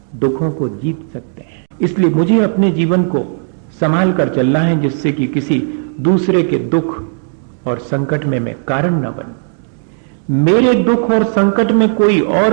दुखों को जीत सकते हैं। इसलिए मुझे अपने जीवन को संभाल कर चलना है, जिससे कि किसी दूसरे के दुख और संकट में मैं कारण न बनूं। मेरे दुख और संकट में कोई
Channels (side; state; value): left; silent; 60 dB below the other